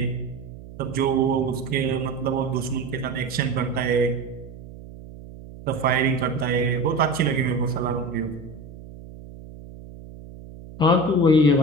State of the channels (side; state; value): right; noise; hum, 16 dB below the sound